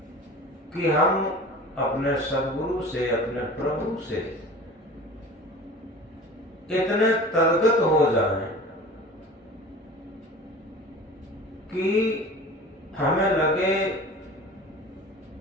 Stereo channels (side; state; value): both; normal; correlation 0.39